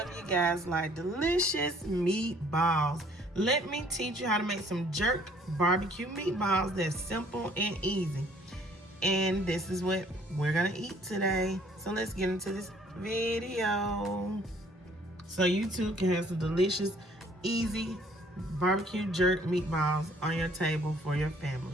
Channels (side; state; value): both; normal; correlation 0.59